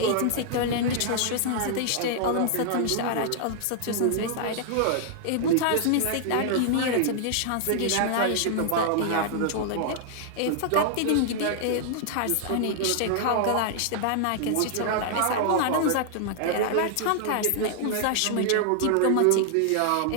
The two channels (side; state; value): both; different; correlation 0.00